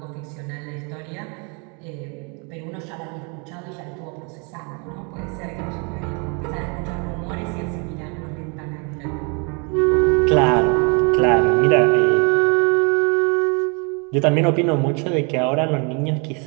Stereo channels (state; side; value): quieter; left; 34.5 dB